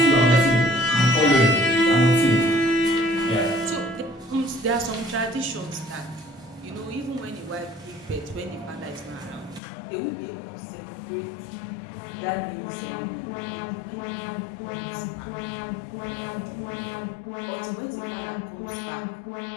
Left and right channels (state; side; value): drops out; right; at 9.6 s